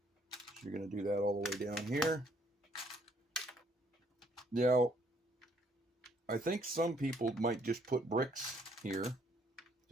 So you're going to do that all the way down here. Now, I think some people might just put bricks here,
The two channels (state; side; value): normal; both; correlation 0.67